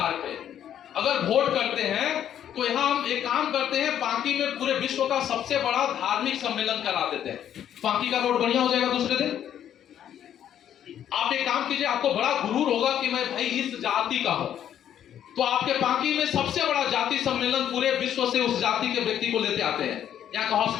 पे अगर वोट करते हैं तो यहां हम एक काम करते हैं, बाकी में पूरे विश्व का सबसे बड़ा धार्मिक सम्मेलन करा देते हैं। बाकी का रोड बढ़िया हो जाएगा दूसरे दिन। आप एक काम कीजिए, आपको बड़ा गुरूर होगा कि मैं भाई इस जाति का हूं, तो आपके बाकी में सबसे बड़ा जाति सम्मेलन पूरे विश्व से उस जाति के व्यक्ति को लेते आते हैं। यहाँ का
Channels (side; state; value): right; quieter; 10.2 dB